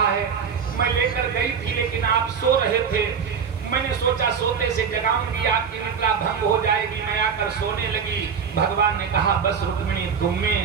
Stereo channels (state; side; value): quieter; left; 6.6 dB